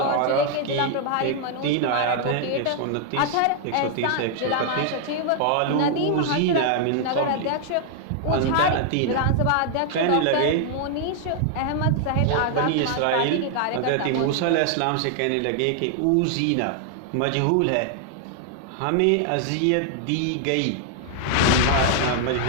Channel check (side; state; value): both; different; correlation 0.00